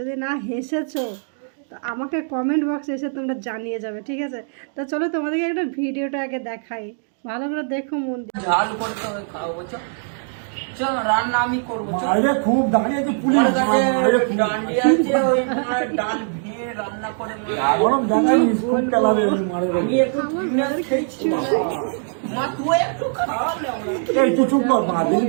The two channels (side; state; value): left; silent; 63 dB below the other